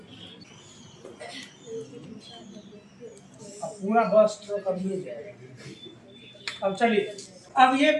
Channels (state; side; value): identical; both; correlation 1.00